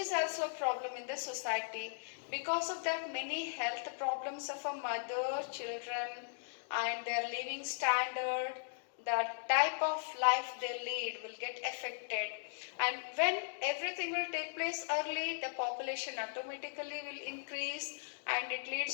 also a problem in the society. Because of that, many health problems of a mother, children, and their living standard, the type of life they lead will get affected. And when everything will take place early, the population automatically will increase and it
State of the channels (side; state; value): right; silent; digital silence